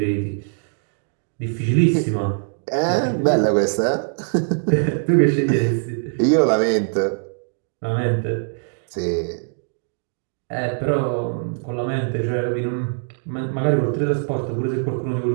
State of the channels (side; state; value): left; silent; digital silence